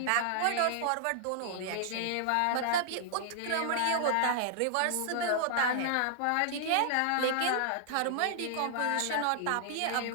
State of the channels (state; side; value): different; both; correlation -0.01